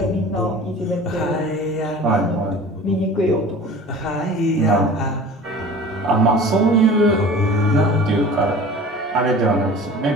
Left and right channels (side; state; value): both; normal; correlation 0.42